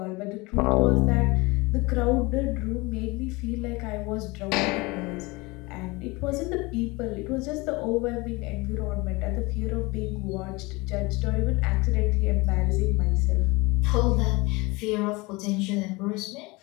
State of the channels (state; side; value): quieter; right; 24.2 dB